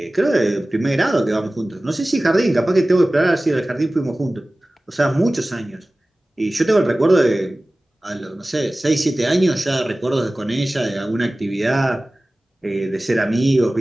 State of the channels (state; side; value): normal; both; correlation 0.97